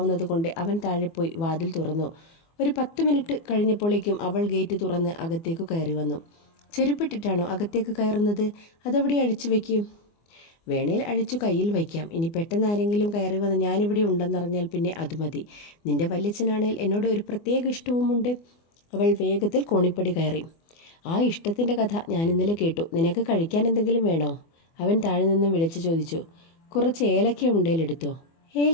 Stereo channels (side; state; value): right; late; 24 ms